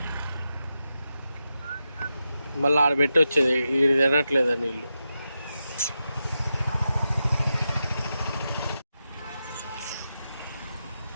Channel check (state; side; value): inverted; both; correlation -0.89